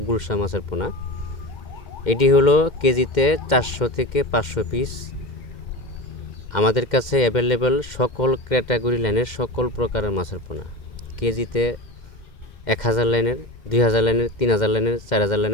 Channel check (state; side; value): late; right; 2.1 ms